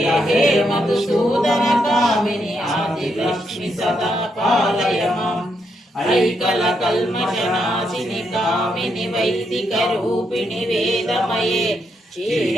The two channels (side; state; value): both; normal; correlation 0.79